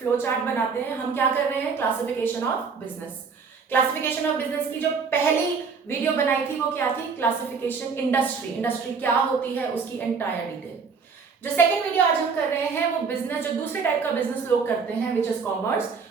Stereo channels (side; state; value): left; quieter; 5.4 dB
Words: चार्ट बनाते हैं. हम क्या कर रहे हैं? Classification of business. Classification of business की जो पहली वीडियो बनाई थी वो क्या थी? क्लासिफिकेशन इंडस्ट्री क्या होती है उसकी एंटायर डिटेल. जो सेकंड वीडियो आज हम कर रहे हैं वो बिजनेस, जो दूसरे टाइप का बिजनेस लोग करते हैं, which is commerce,